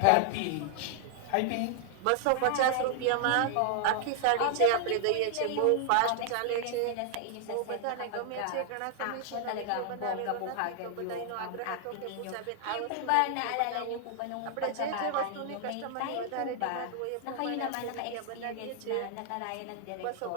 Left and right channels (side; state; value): both; different; correlation 0.00